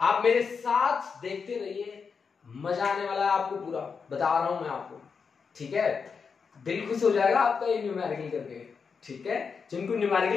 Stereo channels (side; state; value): right; quieter; 5.7 dB